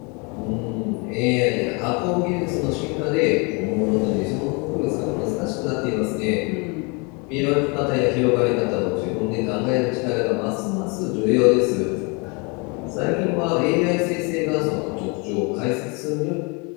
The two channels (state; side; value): quieter; right; 31.4 dB